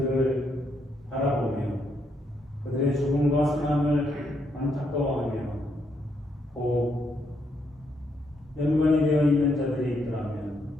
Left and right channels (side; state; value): both; normal; correlation 0.76